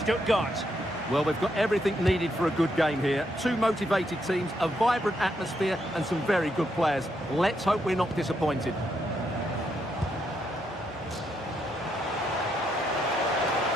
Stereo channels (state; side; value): normal; both; correlation 0.78